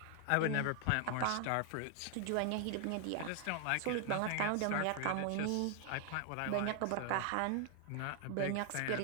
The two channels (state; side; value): different; both; correlation 0.00